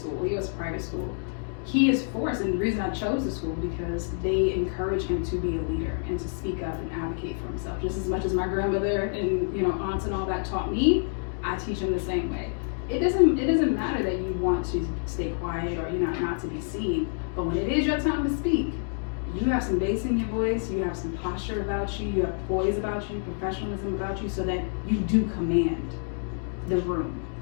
he goes to private school, he is forced. And the reason I chose the school, because they encourage him to be a leader and to speak up and advocate for himself. Just as much as my grandmother and aunts and all that taught me, I teach him the same way. It doesn't matter that you want to stay quiet or not to be seen, but when it is your time to speak, you have some bass in your voice, you have some posture about you, you have poise about you, professionalism about you, so that you do command the room.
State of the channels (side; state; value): right; silent; 60 dB below the other